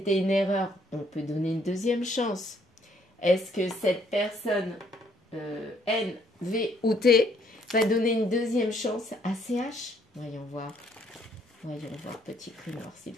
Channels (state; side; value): normal; both; correlation 0.66